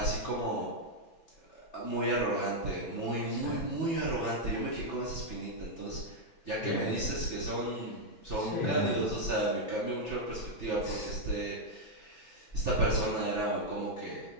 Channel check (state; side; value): late; right; 6.0 ms